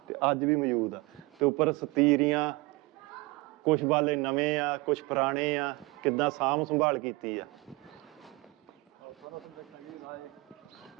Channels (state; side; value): quieter; left; 23.5 dB